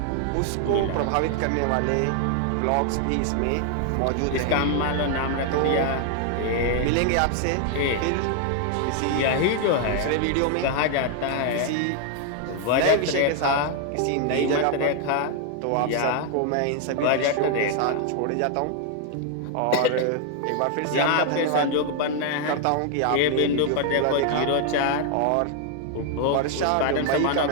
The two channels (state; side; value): different; both; correlation 0.00